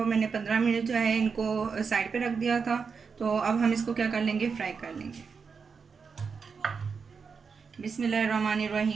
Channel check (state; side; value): quieter; left; 5.5 dB